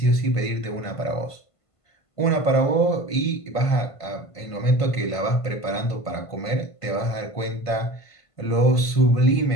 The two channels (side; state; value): right; late; 1.5 ms